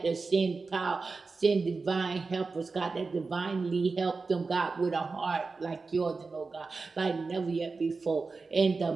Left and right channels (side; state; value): left; quieter; 4.2 dB